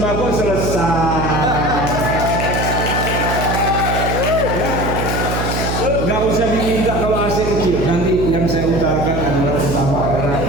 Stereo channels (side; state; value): right; noise; hum, 2 dB below the sound